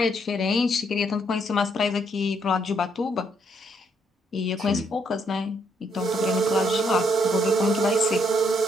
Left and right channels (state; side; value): normal; both; correlation 0.72